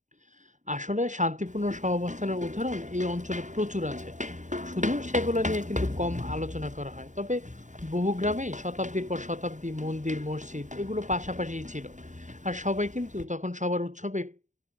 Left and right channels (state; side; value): late; left; 0.36 ms